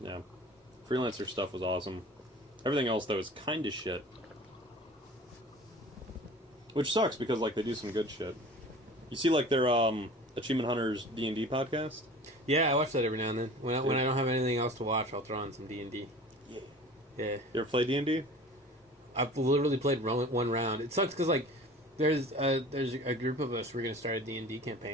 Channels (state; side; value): normal; both; correlation 0.42